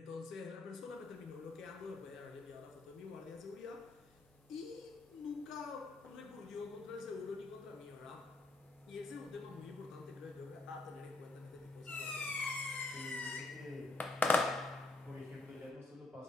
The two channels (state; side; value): quieter; right; 3.1 dB